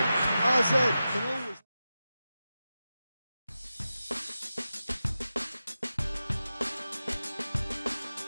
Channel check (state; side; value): inverted; both; correlation -0.92